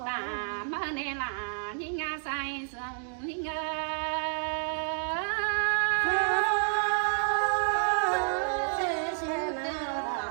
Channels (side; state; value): left; silent; 58 dB below the other